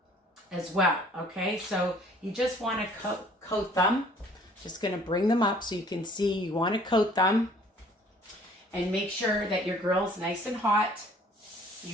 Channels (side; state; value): both; normal; correlation 0.55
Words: as well, okay? So you just want to coat them. Just going to bring them up so you can see. You want to coat them, and make sure that your grill's nice and hot.